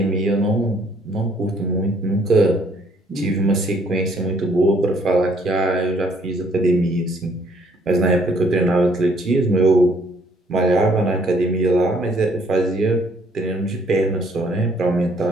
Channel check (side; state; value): both; normal; correlation 0.64